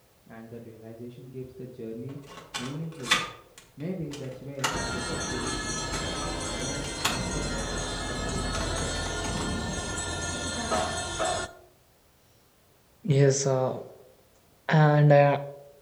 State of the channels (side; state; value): both; identical; correlation 1.00